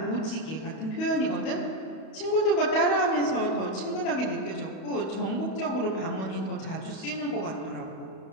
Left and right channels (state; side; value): late; right; 31 ms